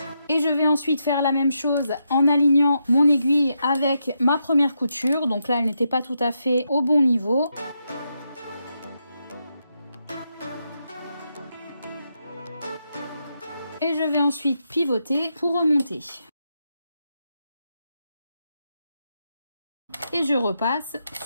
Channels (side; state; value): both; inverted; correlation -0.83